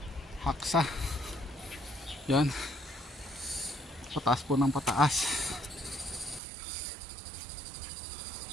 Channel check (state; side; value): drops out; left; at 6.4 s